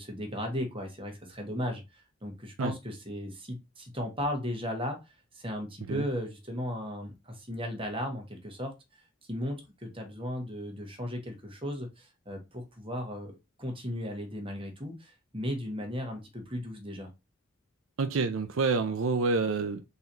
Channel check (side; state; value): both; normal; correlation 0.32